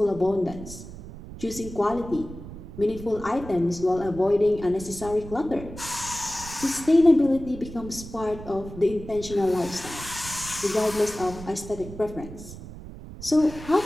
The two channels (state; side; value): noise; right; rumble, 13 dB below the sound